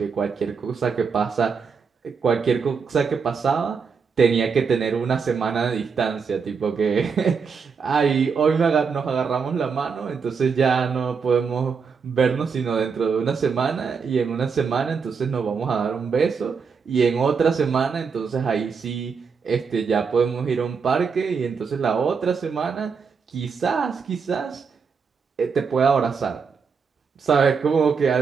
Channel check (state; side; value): quieter; left; 5.7 dB